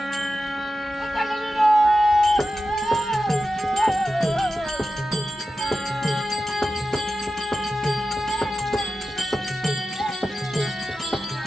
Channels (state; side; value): normal; both; correlation 0.92